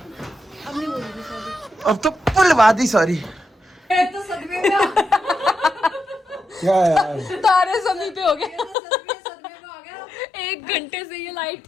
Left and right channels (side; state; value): right; drops out; at 8.8 s